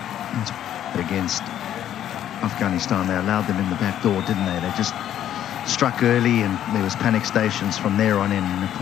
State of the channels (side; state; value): right; quieter; 11.0 dB